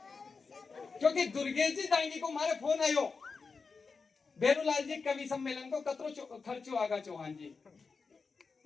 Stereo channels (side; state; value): right; quieter; 4.7 dB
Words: क्योंकि दुर्गेजी दाएंगे को हमारे फोन आयो बेरूलाल जी कवि सम्मेलन को कतरो खर्चो आगा चौहान जी